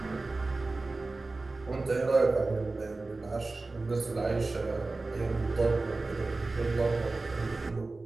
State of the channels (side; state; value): left; quieter; 3.4 dB